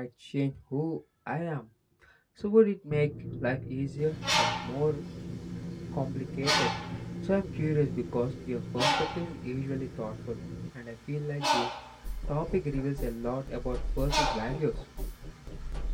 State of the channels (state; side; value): identical; both; correlation 1.00